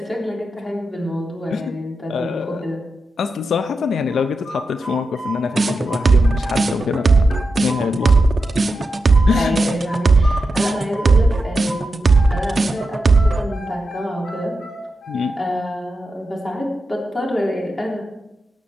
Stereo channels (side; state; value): both; normal; correlation 0.89